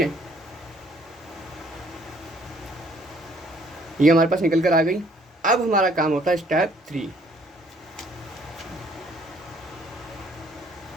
ये हमारे पास निकल कर आ गई। अब हमारा काम होता है स्टेप 3।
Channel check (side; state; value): both; normal; correlation 0.62